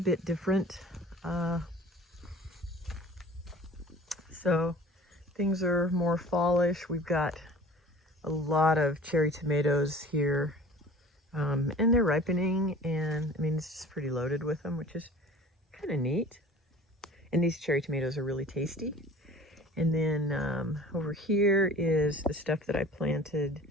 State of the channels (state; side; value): normal; both; correlation 0.44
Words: different. So things are more fallish. We've got a lot of cherry tomatoes here, and they're ripening, and I mean, it's just pretty loaded with them, which is kind of neat. And these cherry tomatoes are really tasty. And then over here is the stuff that I planted,